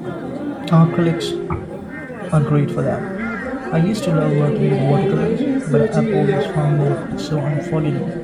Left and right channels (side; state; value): both; identical; correlation 1.00